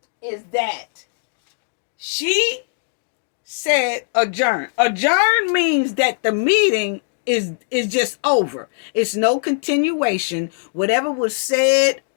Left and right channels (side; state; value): right; silent; digital silence